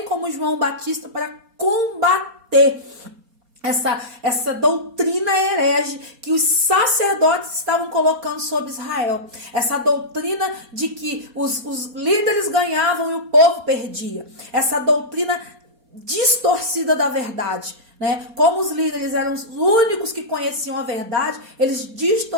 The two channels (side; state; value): left; late; 4.2 ms